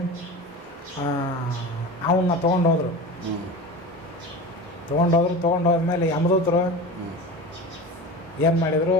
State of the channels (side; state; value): both; normal; correlation 0.30